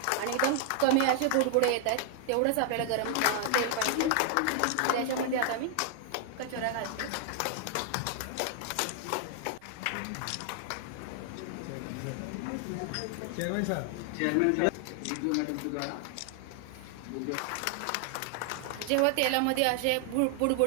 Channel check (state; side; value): different; both; correlation 0.00